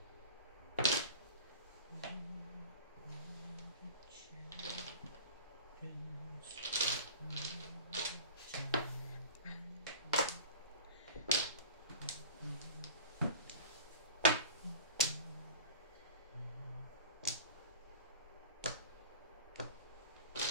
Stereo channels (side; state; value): both; inverted; correlation -0.36